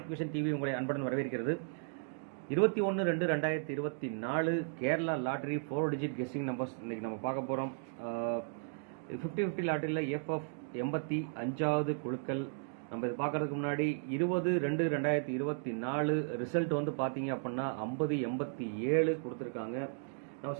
vision TV உங்களை அன்புடன் வரவேற்கிறது. 21/2/2024 Kerala lottery 4 digit guessing numbers இன்றைக்கி நம்ம பார்க்க போகிறோம். 50-50 லாட்டரியில் எஃப்எஃப் 85வது குழுக்கள். நம்ம இது பார்க்குறதுக்கு முன்னாடி 20/2/2024 ரிசல்ட் வந்து பார்த்தீங்க அப்படின்னா 50-87 கொடுத்துருக்காங்க. நம்ம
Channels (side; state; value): left; silent; digital silence